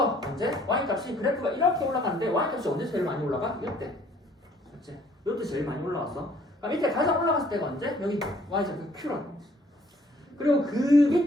언제? y값이 그래프가 이렇게 올라가는데 y값이 언제 제일 많이 올라가? 이때. 그렇지? 이때 제일 많이 올라왔어. 그럼 이때 가장 올라갔을 때가 언제? 여기 y좌표 q라는 거지. 그리고 그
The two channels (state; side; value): normal; both; correlation 0.61